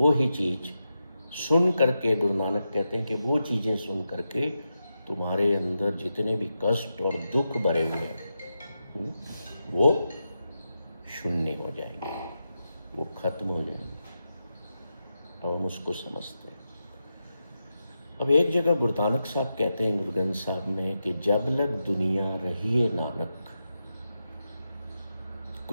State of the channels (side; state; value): both; inverted; correlation -0.88